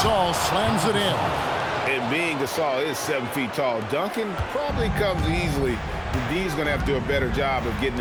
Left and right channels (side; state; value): both; identical; correlation 1.00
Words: slams it in. And being Gasol is 7 feet tall, dunking probably comes easily. D's going to have to do a better job of getting